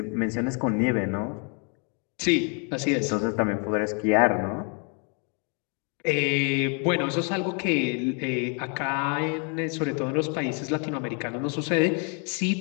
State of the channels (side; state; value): right; quieter; 37.7 dB